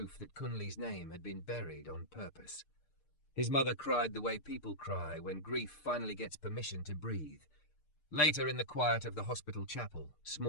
that Kunli's name had been buried on purpose. His mother cried the way people cry when grief finally gets permission to breathe. Later, in the quiet of the hospital chapel,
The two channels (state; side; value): late; right; 6.7 ms